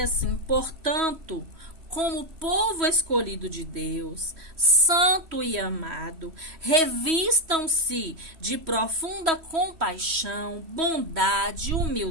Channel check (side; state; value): left; late; 3.1 ms